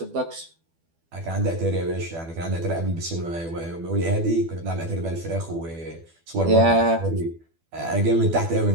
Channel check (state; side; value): late; left; 12 ms